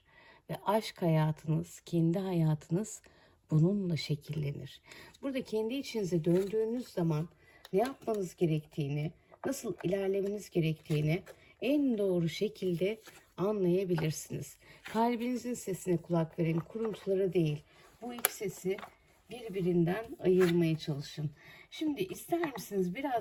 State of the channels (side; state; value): both; identical; correlation 1.00